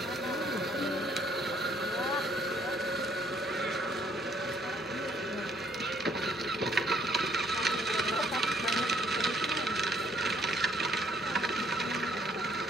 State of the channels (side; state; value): both; normal; correlation 0.66